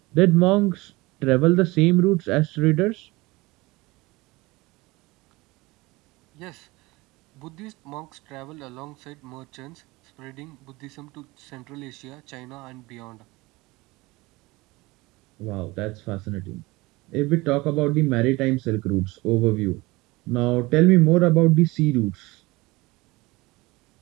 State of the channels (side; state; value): left; quieter; 22.0 dB